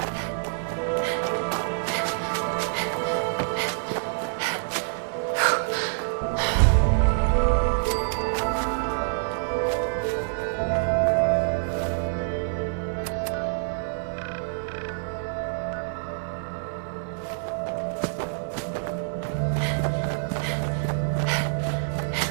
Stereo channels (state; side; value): silent; left; 61 dB below the other